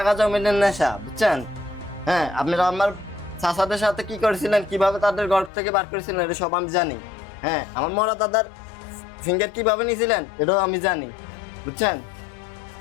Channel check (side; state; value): right; drops out; at 5.5 s